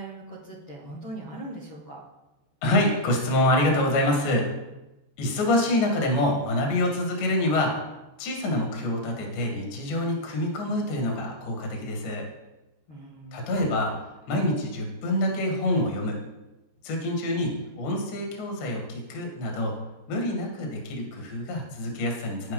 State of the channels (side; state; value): right; late; 14 ms